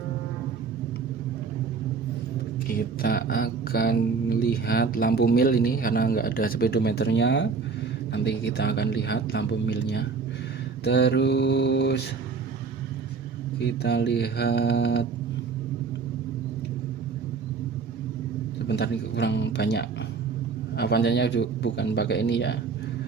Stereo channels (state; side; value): quieter; left; 5.1 dB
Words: Kita akan lihat lampu mil ini karena nggak ada speedometernya. Nanti kita akan lihat lampu milnya. Terus kita lihat, sebentar, ini kurang banyak. Avanza-nya bukan pakai ini ya.